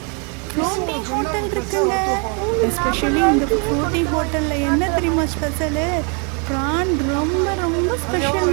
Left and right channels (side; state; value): left; quieter; 36.5 dB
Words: ஃப்ளோட்டிங் ஹோட்டல் இருக்குங்க. எஸ்பெஷலி இந்த ஃப்ளோட்டிங் ஹோட்டலில் என்ன தெரியுமா ஸ்பெஷலு? ப்ரான் ரொம்ப ரொம்ப